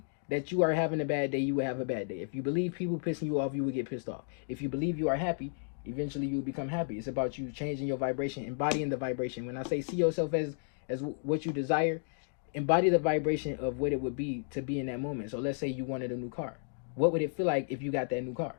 that you are having a bad day, you will have a bad day. If you believe people pissing you off, you will get pissed off. If you believe you are happy, eventually you will become happy. It's about you changing your vibration, embodying the vibration. When I say see yourself as what you desire, embody the vibration of what it would be to be in that moment. So let's say you wanted a new car. What would it feel like if you got that new car?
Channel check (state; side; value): silent; right; digital silence